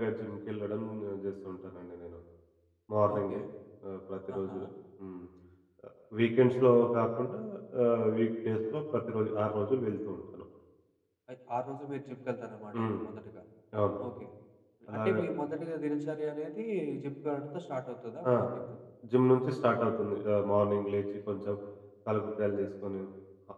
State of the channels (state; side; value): identical; both; correlation 1.00